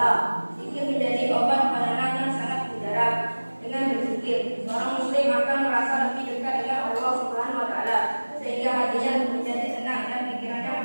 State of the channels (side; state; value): both; inverted; correlation -1.00